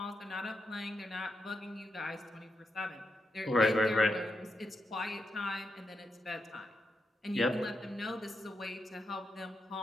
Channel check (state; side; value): normal; both; correlation 0.84